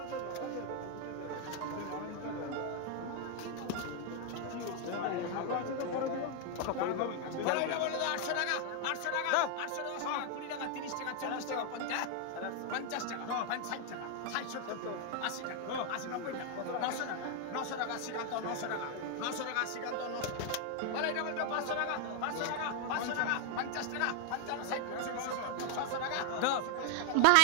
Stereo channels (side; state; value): both; different; correlation 0.00